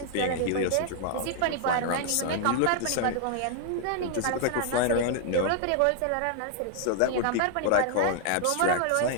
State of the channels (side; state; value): both; different; correlation 0.00